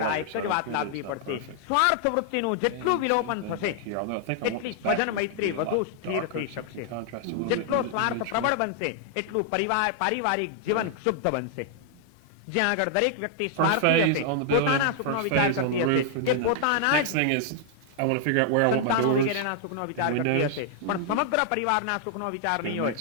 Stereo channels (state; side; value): different; both; correlation -0.01